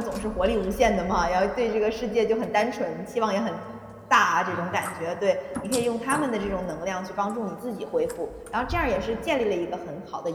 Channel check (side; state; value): both; identical; correlation 1.00